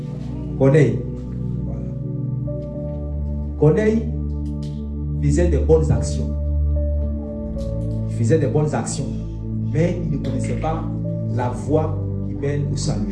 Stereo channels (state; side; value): identical; both; correlation 1.00